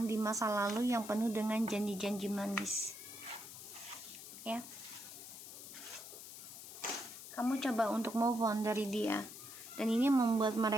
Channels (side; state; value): left; noise; hiss, 13 dB below the sound